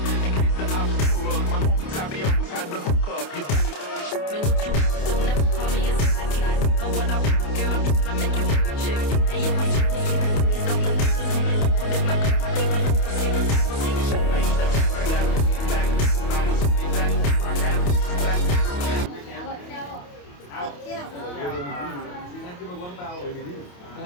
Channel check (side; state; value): right; late; 28 ms